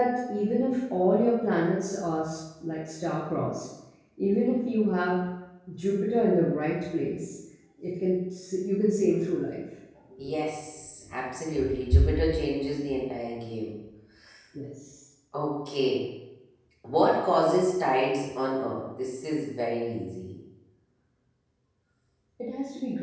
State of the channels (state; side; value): identical; both; correlation 1.00